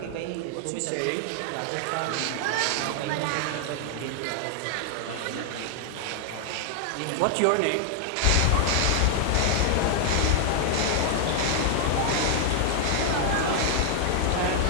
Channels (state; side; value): different; both; correlation 0.00